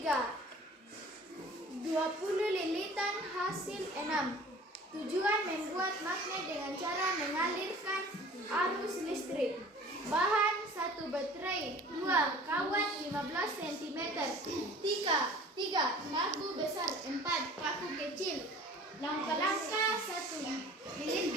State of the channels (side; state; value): both; normal; correlation 0.46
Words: 20 lilitan hasil 6. Tujuan membuat magnet dengan cara mengalirkan arus listrik. Bahan 1 baterai, 2 kawat 15 cm, 3 paku besar, 4 paku kecil. Langkah-langkah 1.